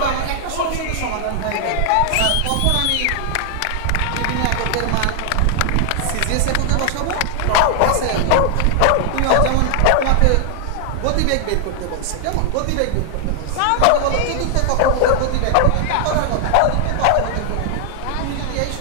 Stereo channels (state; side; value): different; both; correlation 0.00